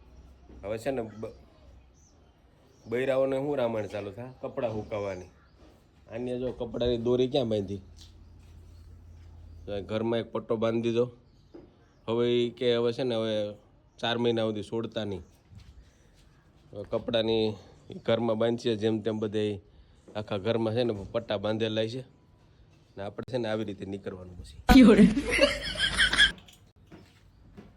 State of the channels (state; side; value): identical; both; correlation 1.00